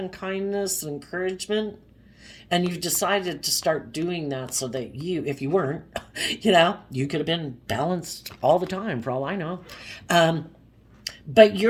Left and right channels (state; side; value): identical; both; correlation 1.00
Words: kindness and encouragement? And you've decided to start doing that so that if you weren't, you could have been balanced all the time for all I know. But